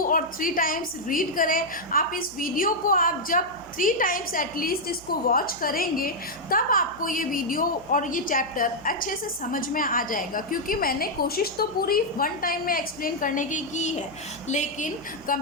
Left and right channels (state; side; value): noise; right; hum, 22 dB below the sound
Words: और 3 टाइम्स रीड करें। आप इस वीडियो को आप जब 3 टाइम्स एटलीस्ट इसको वॉच करेंगे तब आपको ये वीडियो और ये चैप्टर अच्छे से समझ में आ जाएगा। क्योंकि मैंने कोशिश तो पूरी 1 टाइम में एक्सप्लेन करने की है, लेकिन